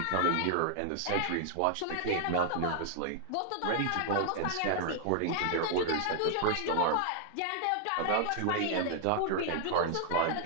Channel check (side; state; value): both; different; correlation 0.00